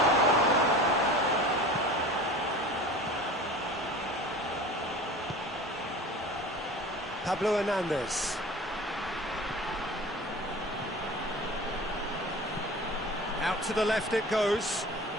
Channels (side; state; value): both; normal; correlation 0.38